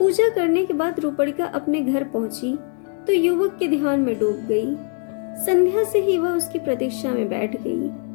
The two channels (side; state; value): right; quieter; 36.7 dB